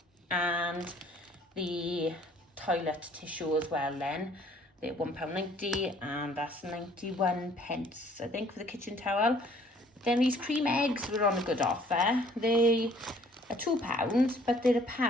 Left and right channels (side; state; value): both; normal; correlation 0.58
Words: and the toilet tissue as well then. They're £1.90, and that's 91 pence I think for the kitchen towel. Then these cream eggs were on a good offer. They are £2, but they're